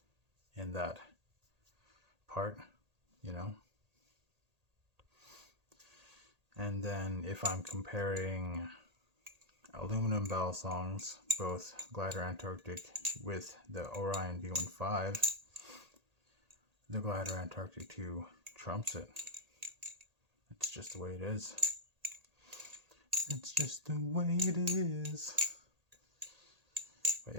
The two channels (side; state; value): left; late; 1.8 ms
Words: in that part, you know. And then if I'm comparing aluminum Balisongs, both Glidr Antarctic with the Orion V15, the Glidr Antarctic 2 trumps it. It's just the way it is. It's just the way it is. But